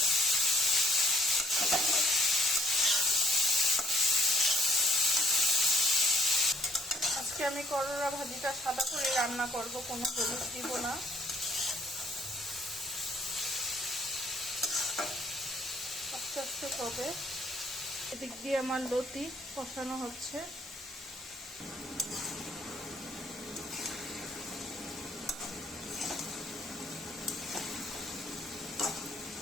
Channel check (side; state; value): both; normal; correlation 0.63